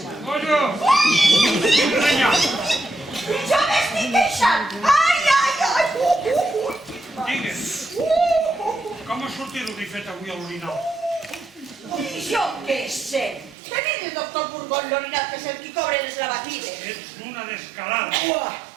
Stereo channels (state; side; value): drops out; left; at 13.6 s